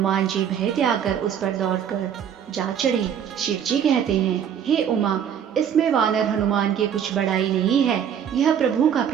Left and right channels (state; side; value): quieter; left; 8.7 dB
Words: जी भय त्याग कर उस पर दौड़कर जा चढ़े। शिव जी कहते हैं, हे उमा, इसमें वानर हनुमान की कुछ बड़ाई नहीं है। यह प्रभु का